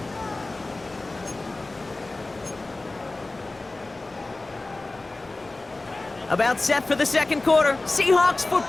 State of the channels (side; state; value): right; quieter; 3.1 dB